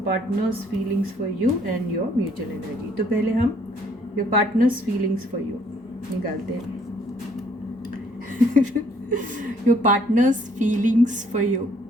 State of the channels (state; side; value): normal; both; correlation 0.64